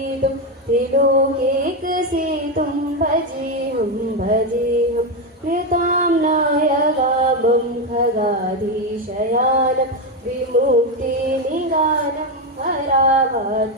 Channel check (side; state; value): both; normal; correlation 0.08